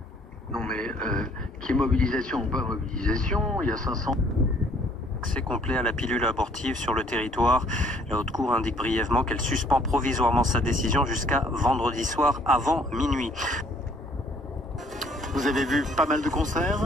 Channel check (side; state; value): both; normal; correlation 0.61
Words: Non mais, qui est mobilisation ou pas mobilisation, il y a 500... Accès complet à la pilule abortive sur le territoire. La Haute Cour indique brièvement qu'elle suspend provisoirement sa décision jusqu'à vendredi soir avant minuit. Vous avez vu pas mal de